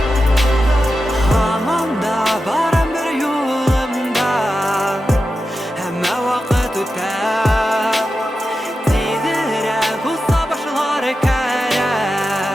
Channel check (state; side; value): normal; both; correlation 0.91